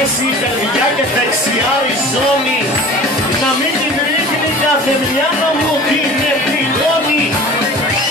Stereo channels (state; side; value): normal; both; correlation 0.41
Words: η καρδιά και δεξιά η ζώνη. Να μην την ρίχνει κάθε μυαλό μου την επιγόνη.